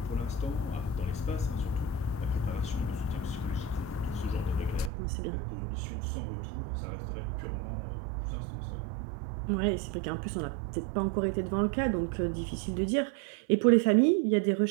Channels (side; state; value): left; drops out; at 4.9 s